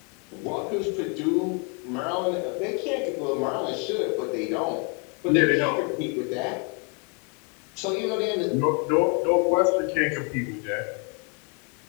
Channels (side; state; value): right; quieter; 34.5 dB